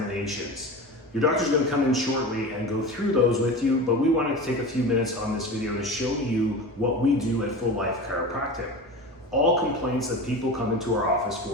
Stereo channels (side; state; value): both; normal; correlation 0.30